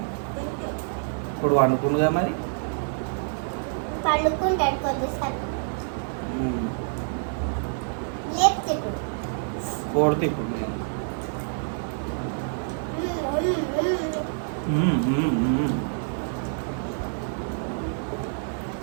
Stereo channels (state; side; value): silent; left; 60 dB below the other